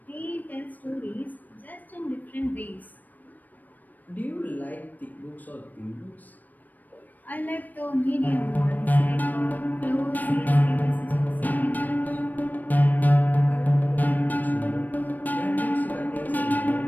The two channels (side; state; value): right; late; 0.085 ms